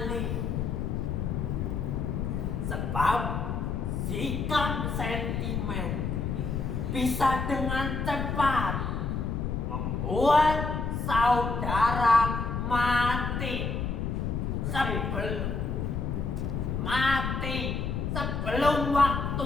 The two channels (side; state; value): left; noise; rumble, 1 dB below the sound